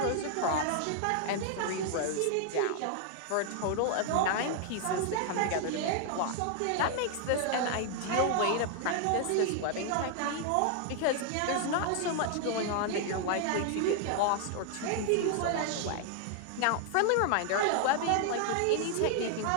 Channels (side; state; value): both; different; correlation 0.00